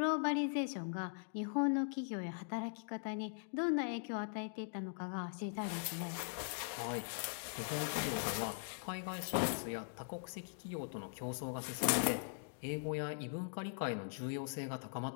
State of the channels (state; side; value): silent; right; digital silence